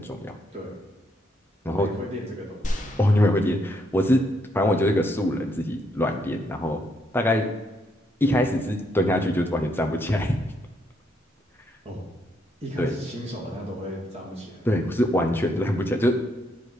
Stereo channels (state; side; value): normal; both; correlation 0.75